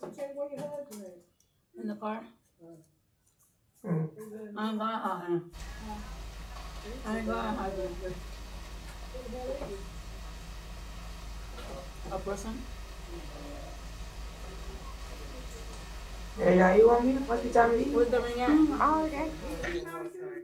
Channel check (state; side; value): identical; both; correlation 1.00